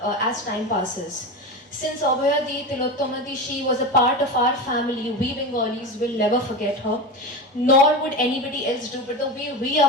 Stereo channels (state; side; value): normal; both; correlation 0.23